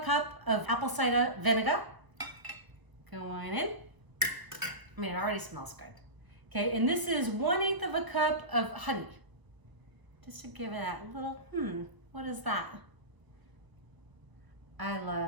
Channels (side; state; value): left; late; 1.0 ms